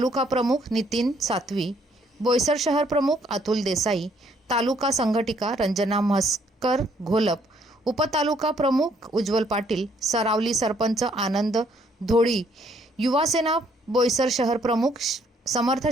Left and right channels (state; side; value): normal; both; correlation 0.66